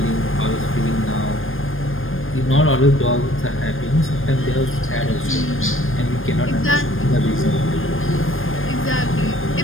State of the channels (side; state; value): right; late; 0.59 ms